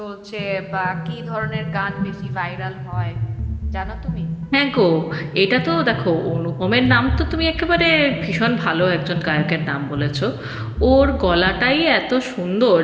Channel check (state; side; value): identical; both; correlation 1.00